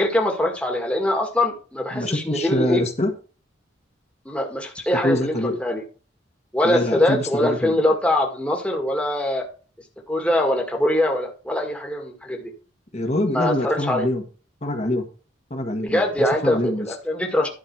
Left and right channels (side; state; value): both; normal; correlation 0.72